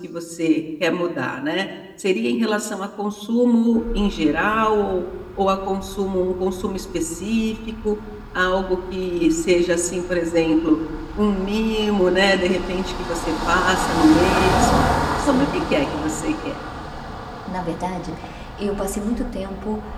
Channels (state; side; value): identical; both; correlation 1.00